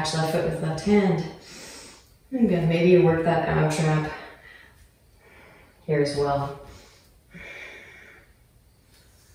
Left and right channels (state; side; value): identical; both; correlation 1.00